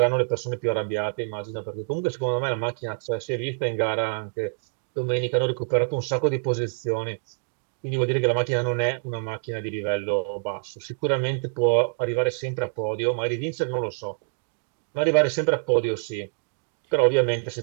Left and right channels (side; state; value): left; silent; digital silence